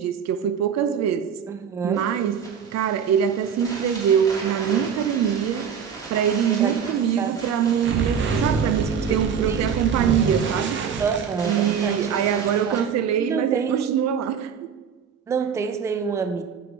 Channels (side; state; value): left; quieter; 7.5 dB